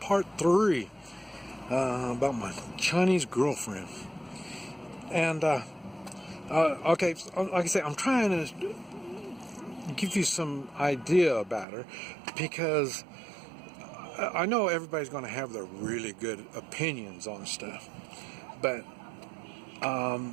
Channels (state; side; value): drops out; left; at 11.7 s